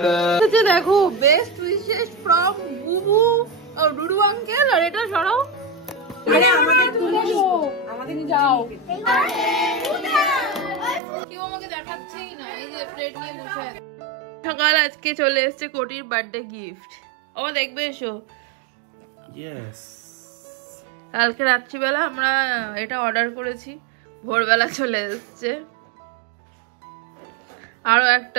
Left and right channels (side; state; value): left; drops out; at 11.0 s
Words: अच्छा देखो बेस्ट विशेस फ्रॉम बुबू और डुडू अंकल और এটা সরাও আরে আমাকে তুলে দাও আমাদের নিয়ে যাও কেউ আমাকে দেখাচ্ছেই না এই যে প্লেট নিয়ে বসে আছে সকাল আজকে চলে এসেছে কোটির বার্থডে গিফট ও দেখবে এসো यस কালকে রাত্রিবেলা আমরা এটা অর্ডার করেছি ভোরবেলা চলে এসেছে আরো